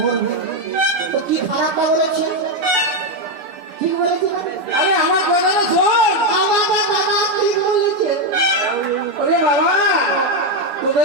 মরবে তো কি খারাপটা বলেছে? ঠিক বলেছে না? আরে আমার কথাটা শোন। আমার দাদা ঠিক বলেছে। ওরে বাবা,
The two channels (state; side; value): late; left; 7.1 ms